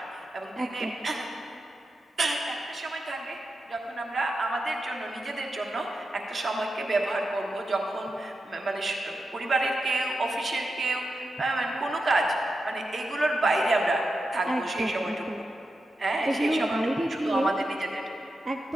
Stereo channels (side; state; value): both; normal; correlation 0.89